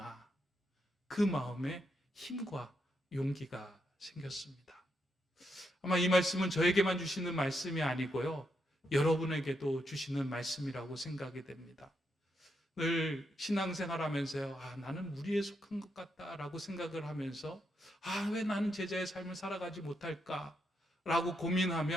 그 마음에 힘과 용기가 생겼습니다. 아마 이 말씀은 저에게만 주시는 말씀이 아니고요. 여러분에게도 주시는 말씀이라고 생각이 됩니다. 늘 신앙생활 하면서요. 나는 무리에 속한 것 같다라고 생각을 하면서 왜 나는 제자의 삶을 살아가지 못할까? 라고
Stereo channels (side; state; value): both; normal; correlation 0.81